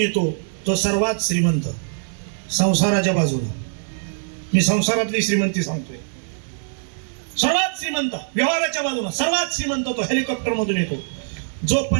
तो सर्वात श्रीमंत. संसाराच्या बाजूनं मी संसारातली श्रीमंती सांगतोय. सर्वात श्रीमंत व्यवहाराच्या बाजूनं सर्वात श्रीमंत तो हेलिकॉप्टर मधून येतो. जो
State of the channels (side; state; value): left; silent; digital silence